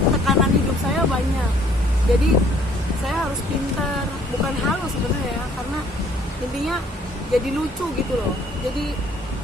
hidup saya banyak. Jadi saya harus pintar, bukan halu sebenarnya ya, karena intinya jadi lucu gitu loh.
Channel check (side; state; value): both; normal; correlation 0.60